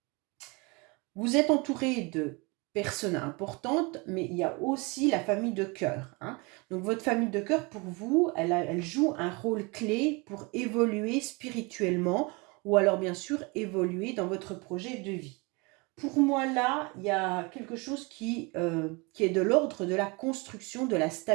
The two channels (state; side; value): quieter; left; 28.1 dB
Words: vous êtes entouré de personnes importantes, mais il y a aussi la famille de cœur, hein. Donc votre famille de cœur, pour vous, elle joue un rôle clé pour évoluer spirituellement ou alors bien sûr évoluer dans votre projet de vie. Pour moi, là, il y a quelque chose qui est de l'ordre de la construction, de la